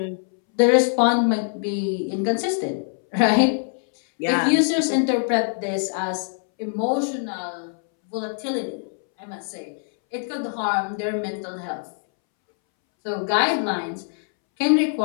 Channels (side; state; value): right; silent; 63 dB below the other